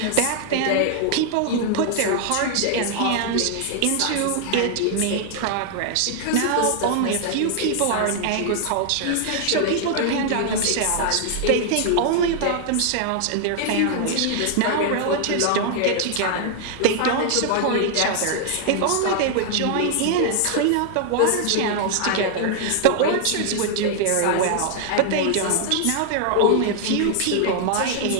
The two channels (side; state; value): both; different; correlation 0.00